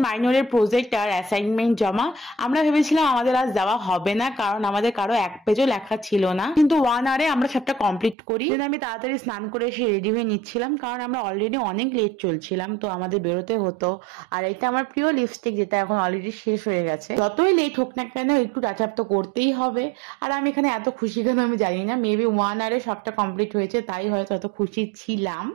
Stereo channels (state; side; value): drops out; left; at 8.2 s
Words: মাইনরের প্রজেক্ট আর অ্যাসাইনমেন্ট জমা। আমরা ভেবেছিলাম আমাদের আজ যাওয়া হবে না, কারণ আমাদের কারো এক পেজও লেখা ছিল না, কিন্তু 1 আওয়ারে আমরা সবটা কমপ্লিট করি। আমি তাড়াতাড়ি স্নান করে এসে রেডি হয়ে নিচ্ছিলাম, কারণ আমরা অলরেডি অনেক লেট চলছিলাম, তো আমাদের বেরোতে হতো। আর এটা আমার প্রিয় লিপস্টিক, যেটা এখন অলরেডি শেষ হয়ে গেছে। যতই লেট হোক না কেন, একটু টাচ আপ তো করতেই হবে। আর আমি এখানে এত খুশি কেন আমি জানি না, মেবি 1 আওয়ারে সবটা কমপ্লিট হয়েছে, তাই হয়তো এত খুশি ছিলাম।